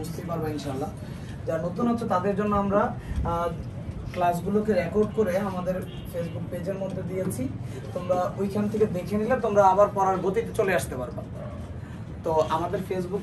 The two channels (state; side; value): identical; both; correlation 1.00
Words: পারবে ইনশাল্লাহ। যারা নতুন আছো তাদের জন্য আমরা ক্লাসগুলোকে রেকর্ড করে আমাদের ফেসবুক পেজের মধ্যে দিয়েছি। তোমরা ওইখান থেকে দেখে নিলে তোমরা আবার পড়ার গতিতে চলে আসতে পারবা। তো আমাদের ফেসবুক